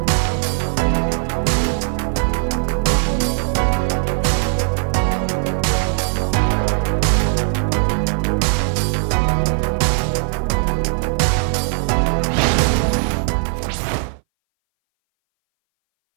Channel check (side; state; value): left; silent; 62 dB below the other